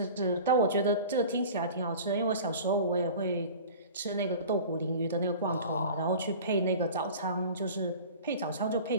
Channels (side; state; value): both; inverted; correlation -0.39